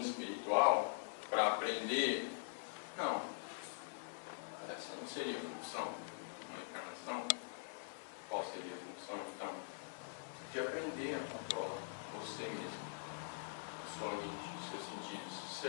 espiritual, para aprender... Não. Essa não seria a função de uma encarnação. Qual seria a função, então? De aprender a controlar você mesmo, a sua mente, os seus sentidos,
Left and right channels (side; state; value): right; silent; digital silence